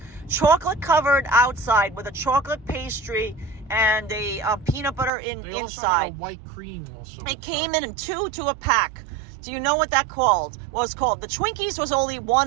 chocolate covered outside with a chocolate pastry and a peanut butter inside? They also had white cream also. It came in two to a pack. Do you know what that was called? The Twinkies was only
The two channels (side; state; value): left; drops out; at 5.1 s